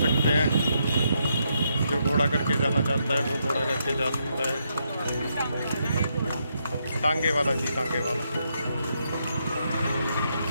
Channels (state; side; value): inverted; both; correlation -0.79